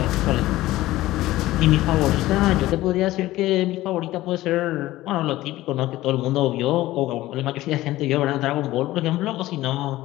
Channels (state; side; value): quieter; right; 16.6 dB